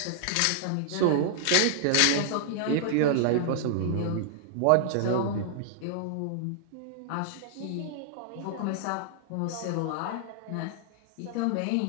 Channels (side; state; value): both; different; correlation -0.01